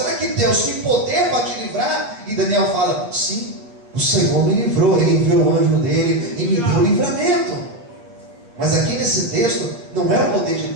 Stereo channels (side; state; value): left; late; 8.4 ms